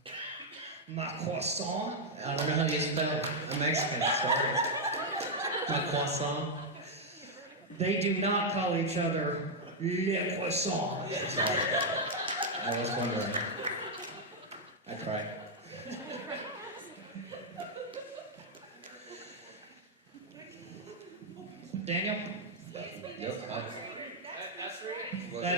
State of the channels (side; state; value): both; normal; correlation -0.02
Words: Ma croissant? I don't know how you spell it. I'm Mexican, sorry. My croissant. They do not call each other le croissant. Sorry. I was wondering. I tried. Daniel? Yep. That's right. That